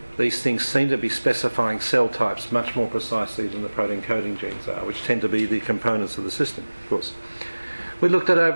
These things seem to be specifying cell types much more precisely than the protein coding genes are, which tend to be the components of the system, of course. We looked at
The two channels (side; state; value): both; inverted; correlation -1.00